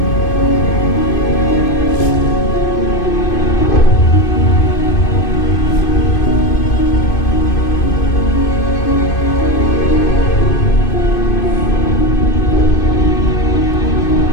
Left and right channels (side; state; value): right; late; 2.5 ms